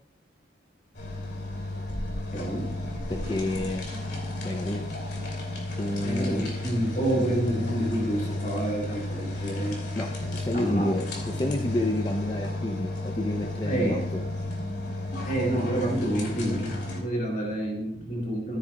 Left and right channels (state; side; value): normal; both; correlation 0.75